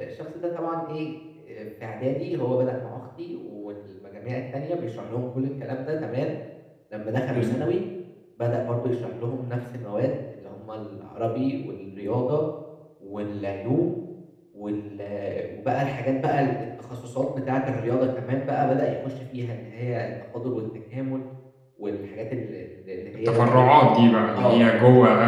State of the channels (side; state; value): both; identical; correlation 1.00